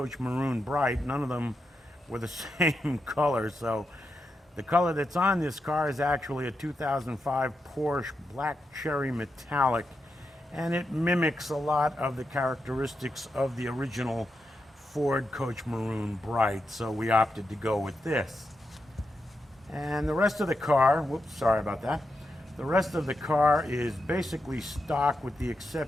Maroon Bright, none of them were the same color. So the color that's on this car is actually a 2005 Porsche Black Cherry Metallic, and it mimics a lot of the characteristics of the original Ford Coach Maroon Bright, so we opted to go with this. And the rest of the car, whoops, sorry about that. The rest of the car is basically stock with the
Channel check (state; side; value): normal; both; correlation 0.86